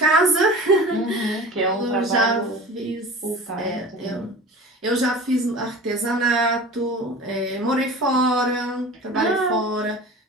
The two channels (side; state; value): both; normal; correlation 0.37